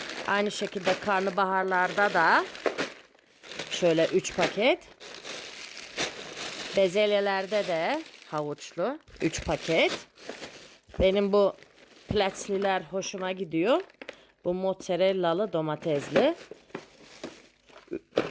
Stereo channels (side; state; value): both; identical; correlation 1.00